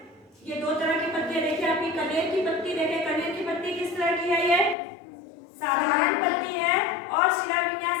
ये दो तरह की पत्तियां देखिए। आपकी कनेर की पत्ती देखें, कनेर की पत्ती किस तरह की है? ये साधारण पत्ती है और शिरा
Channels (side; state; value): right; drops out; at 4.8 s